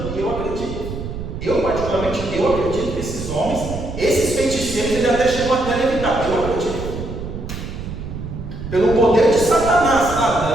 e eu acredito. Eu particularmente, acredito que esses homens, esses feiticeiros, eles até chegam até a levitar. Eu acredito. Pelo poder de Satanás,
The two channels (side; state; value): right; noise; rumble, 8 dB below the sound